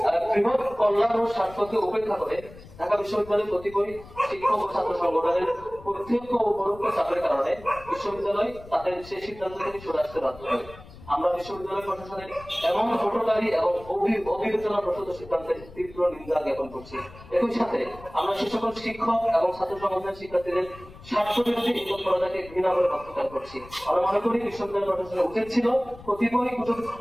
বৃহৎ কল্যাণ ও স্বার্থকে উপেক্ষা করে ঢাকা বিশ্ববিদ্যালয়ের প্রতিকূল শিক্ষক ও ছাত্র সংগঠনের প্রত্যক্ষ ও পরোক্ষ চাপের কারণে বিশ্ববিদ্যালয় তাদের সেই সিদ্ধান্ত থেকে সরে আসতে বাধ্য হয়। আমরা বিশ্ববিদ্যালয় প্রশাসনের এমন হঠকারী এবং অবিবেচনা প্রসূত সিদ্ধান্তের তীব্র নিন্দা জ্ঞাপন করছি। একই সাথে আমরা সে সকল শিক্ষক এবং ছাত্র সংগঠনের শিক্ষার্থীদের স্বার্থ বিরোধী এই তৎপরতাকে ঘৃণা করে প্রত্যাখ্যান করছি। আমরা মনে করি বিশ্ববিদ্যালয় প্রশাসনের উচিত ছিল কতিপয়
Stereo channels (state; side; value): noise; left; rumble, 19 dB below the sound